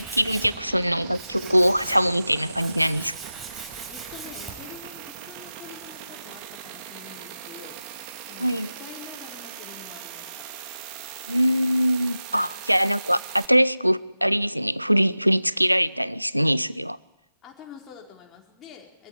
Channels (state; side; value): inverted; both; correlation -0.95